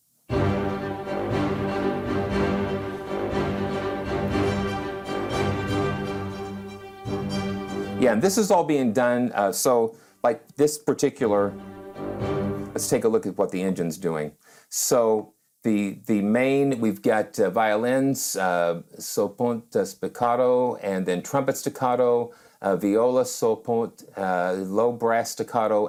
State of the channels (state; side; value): identical; both; correlation 1.00